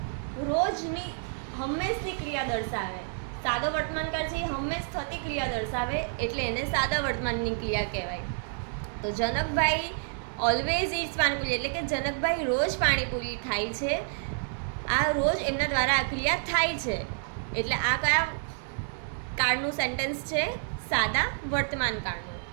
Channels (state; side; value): silent; left; digital silence